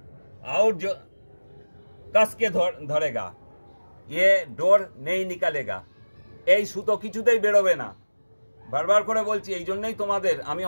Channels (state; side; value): inverted; both; correlation -1.00